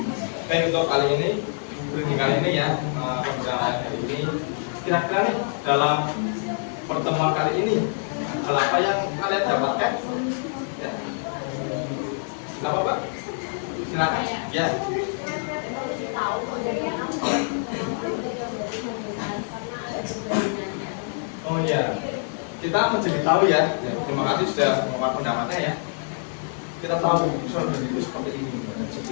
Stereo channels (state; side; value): silent; right; 61 dB below the other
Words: untuk kali ini, briefing kali ini ya, pembicaraan hari ini, kira-kira nih dalam pertemuan kali ini, hal apa yang kalian dapatkan? Ya. Kenapa, Pak? Silakan. Ya. Oh ya, kita menjadi tahu ya. Terima kasih sudah memaparkan pendapatnya ya. Kita tahu personal branding itu seperti ini,